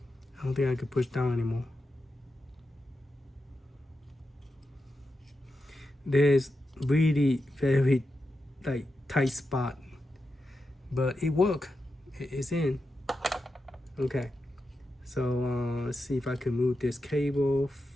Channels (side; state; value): both; normal; correlation 0.89